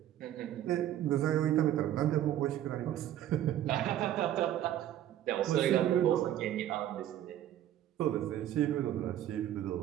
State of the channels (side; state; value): left; quieter; 12.0 dB